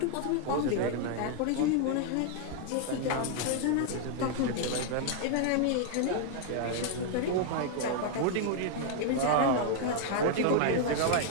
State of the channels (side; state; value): both; different; correlation 0.00